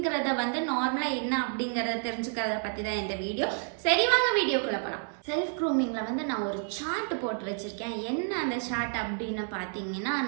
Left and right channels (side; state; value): left; silent; 58 dB below the other